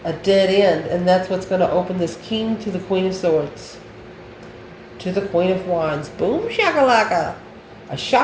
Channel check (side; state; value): both; identical; correlation 1.00